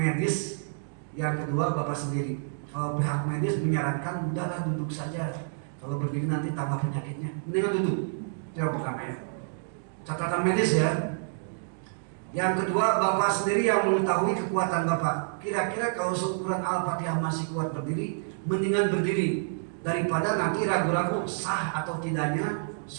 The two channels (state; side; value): silent; left; digital silence